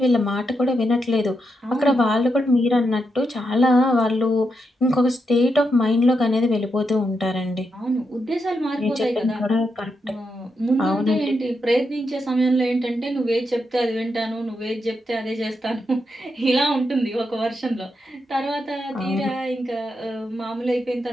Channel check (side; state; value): both; normal; correlation 0.84